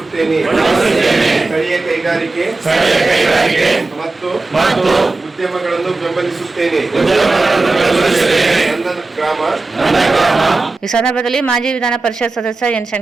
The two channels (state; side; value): quieter; left; 3.4 dB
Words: ಸ್ಥಳೀಯ ಕೈಗಾರಿಕೆ ಮತ್ತು ಉದ್ಯಮಗಳನ್ನು ಬೆಂಬಲಿಸುತ್ತೇನೆ. ನನ್ನ ಗ್ರಾಮ. ಈ ಸಂದರ್ಭದಲ್ಲಿ ಮಾಜಿ ವಿಧಾನ ಪರಿಷತ್ ಸದಸ್ಯ ಎನ್